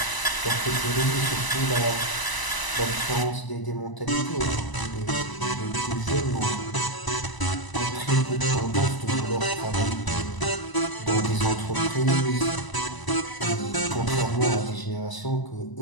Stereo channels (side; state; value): right; late; 1.0 ms